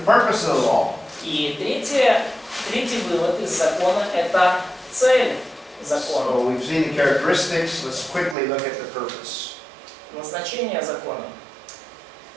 purpose of the law. И третий вывод из закона – это цель закона. So we've seen the characteristics. Let's quickly look at the purpose. Назначение закона.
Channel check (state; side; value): drops out; left; at 8.3 s